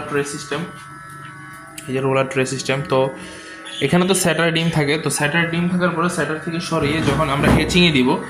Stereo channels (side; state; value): both; identical; correlation 1.00